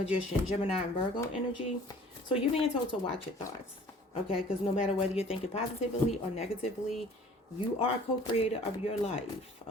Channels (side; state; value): both; normal; correlation 0.50